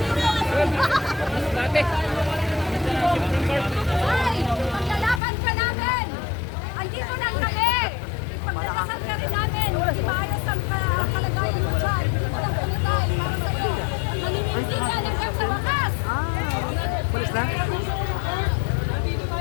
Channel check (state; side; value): drops out; right; at 5.2 s